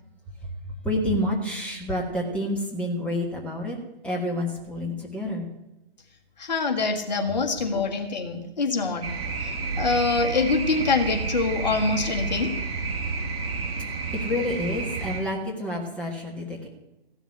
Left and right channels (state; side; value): normal; both; correlation -0.03